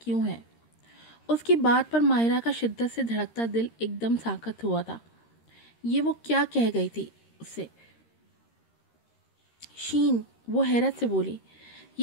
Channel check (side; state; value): right; late; 13 ms